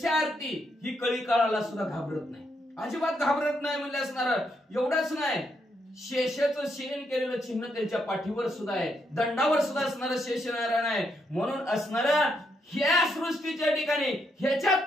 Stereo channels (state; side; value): normal; both; correlation 0.78